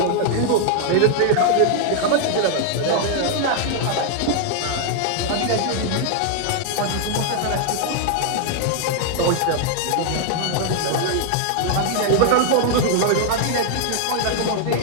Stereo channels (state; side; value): different; both; correlation 0.00